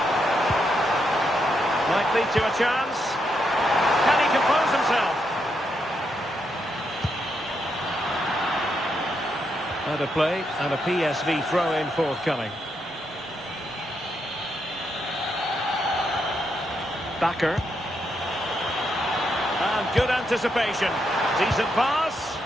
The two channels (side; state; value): both; normal; correlation 0.80